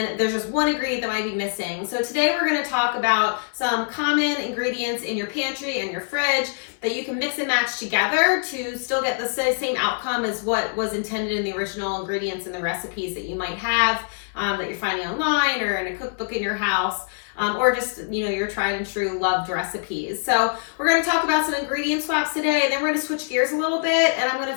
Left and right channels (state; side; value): silent; right; digital silence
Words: there's just one ingredient that might be missing. So today we're going to talk about some common ingredients in your pantry and your fridge that you can mix and match together to still get the same outcome as what was intended in the original ingredients and the recipes that you might have that you're finding online or in a cookbook in your house. Or just, your tried and true loved recipes. So we're going to talk about some ingredient swaps today, and then we're going to switch gears a little bit, and I'm going